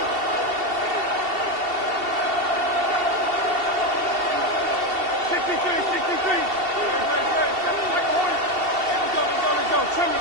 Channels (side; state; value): left; late; 2.7 ms